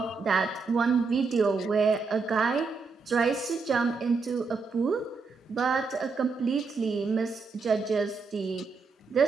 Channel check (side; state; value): left; quieter; 4.6 dB